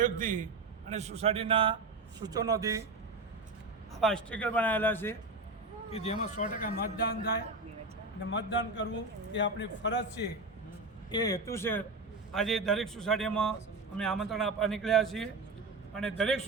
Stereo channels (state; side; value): quieter; left; 3.5 dB